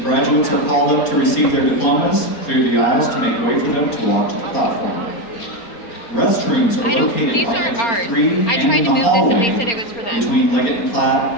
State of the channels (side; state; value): right; late; 4.3 ms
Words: graduates are called up to receive their diplomas, clear the aisles to make way for them to walk to the platform. Restrooms are located these on aren't exit ours. 3 I and tried in to the move hallway this and they said it was for them. between Leggett and